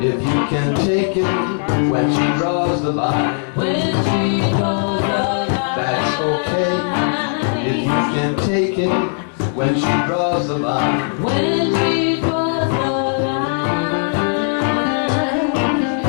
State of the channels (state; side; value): silent; right; 64 dB below the other